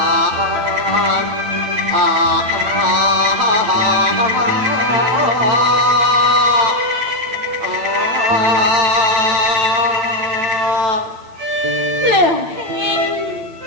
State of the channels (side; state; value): left; late; 9.0 ms